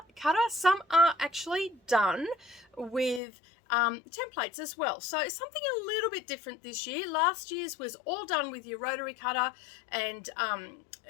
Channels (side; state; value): right; drops out; at 3.2 s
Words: Some are actually done with templates as well, so something a little bit different this year. Last year's was all done with your rotary cutter, and